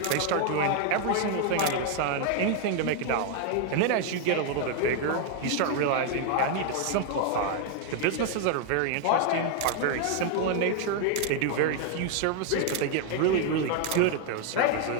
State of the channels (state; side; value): different; both; correlation 0.00